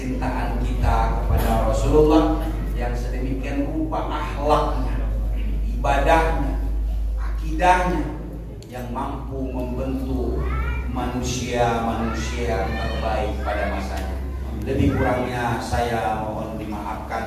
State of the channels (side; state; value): both; identical; correlation 1.00